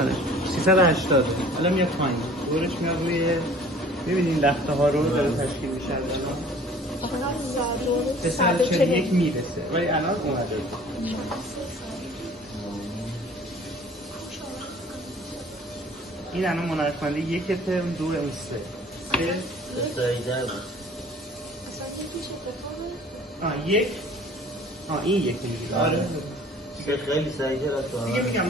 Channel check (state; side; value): normal; both; correlation 0.50